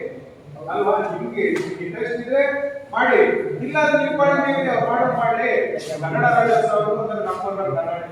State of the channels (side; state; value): both; identical; correlation 1.00